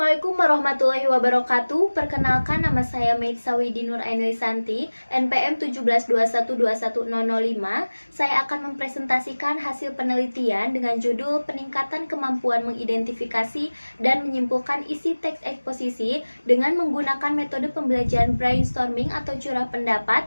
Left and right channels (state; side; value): inverted; both; correlation -1.00